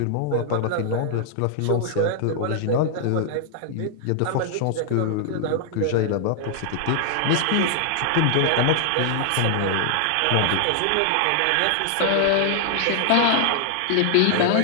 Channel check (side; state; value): both; different; correlation -0.01